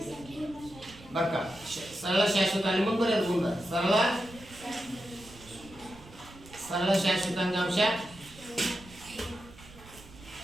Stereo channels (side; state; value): right; noise; rumble, 20 dB below the sound